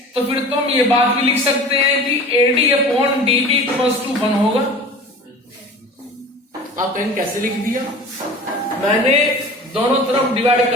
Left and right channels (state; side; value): normal; both; correlation 0.39